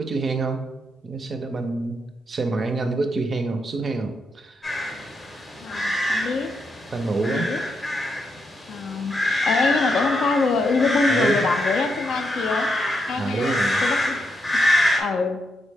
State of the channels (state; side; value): normal; both; correlation 0.81